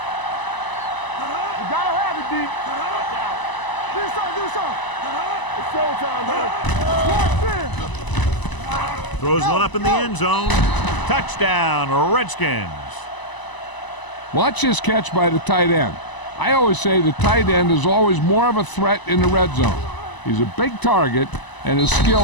You gotta have it, D. Do something. It's showtime, man. Throws one up in the end zone. Touchdown, Redskins. Watch this catch by the tight end. I always say the tight end is always more of a threat in the red zone. He's a big target, and his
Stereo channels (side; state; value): right; late; 1.0 ms